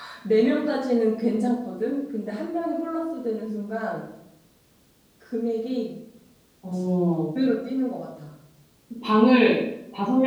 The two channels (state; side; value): identical; both; correlation 1.00